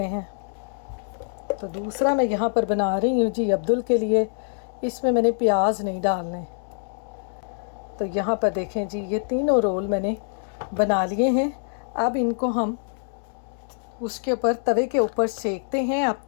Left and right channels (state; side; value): silent; right; digital silence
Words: हैं। तो दूसरा मैं यहाँ पर बना रही हूँ जी अब्दुल के लिए। इसमें मैंने प्याज नहीं डालने। तो यहाँ पर देखें जी, ये तीनों रोल मैंने बना लिए हैं। अब इनको हम उसके ऊपर तवे के ऊपर सेकते हैं। आप